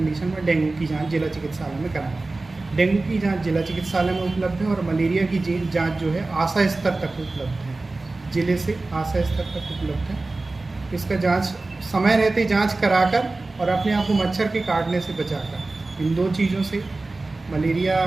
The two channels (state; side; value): quieter; left; 3.3 dB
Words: में डेंगू की जांच जिला चिकित्सालय में कराएं। डेंगू की जांच जिला चिकित्सालय में उपलब्ध है और मलेरिया की जांच जो है आशा स्तर तक उपलब्ध है, जिले से आशा स्तर तक उपलब्ध है। इसका जांच समय रहते जांच कराकर और अपने आप को मच्छर के काटने से बचाकर, इन 2 चीज़ों से, मलेरिया